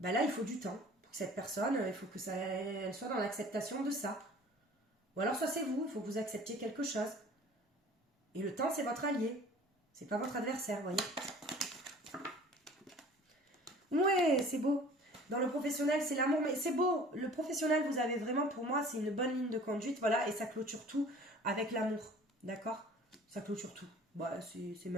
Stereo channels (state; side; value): normal; both; correlation 0.47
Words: là, il faut du temps pour que cette personne, il faut que elle soit dans l'acceptation de ça. Ou alors, soit c'est vous, il faut que vous acceptiez quelque chose. Et le temps, c'est votre allié. C'est pas votre adversaire, vous voyez. Ouais, c'est beau. Dans le professionnel, c'est l'amour, mais c'est beau. Le professionnel, vous avez vraiment, pour moi, c'est une bonne ligne de conduite, voilà, et ça clôture tout avec l'amour, d'accord? Ça clôture tout. Bah, c'est